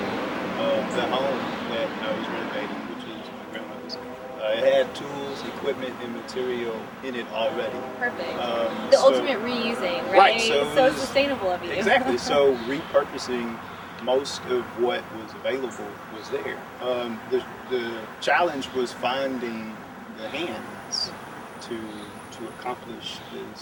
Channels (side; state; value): both; identical; correlation 1.00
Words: the home that I was renovating, which is my grandmother's, it had tools, equipment, and material in it already. perfect. So- Ultimate reusing, right? Right, so it was- sustainable of you. Exactly. So repurposing most of what was available was there. The challenge was finding the hands to accomplish